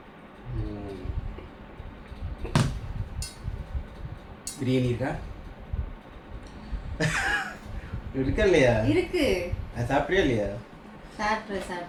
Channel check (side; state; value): both; identical; correlation 1.00